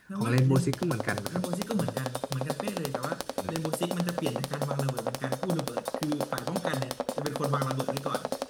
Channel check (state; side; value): identical; both; correlation 1.00